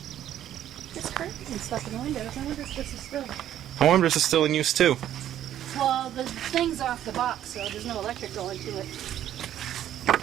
It's curtains and stuff in the windows. I wonder if this is still... I wonder if this is still in use too. Well, the thing's off the box, so there's no electric going to it.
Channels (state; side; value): quieter; left; 11.4 dB